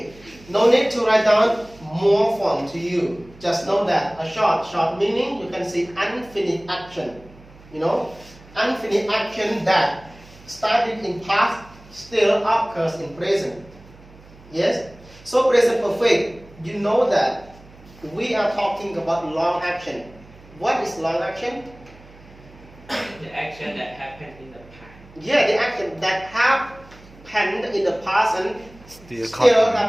No need to write down more form to you. Just know that a short meaning, you can see unfinished action. You know, unfinished action that started in past still occurs in present. Yes? So present perfect, you know that we are talking about long action. What is long action? The action that happened in the past. Yeah, the action that happened in the past and Still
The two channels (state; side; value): noise; right; hum, 23 dB below the sound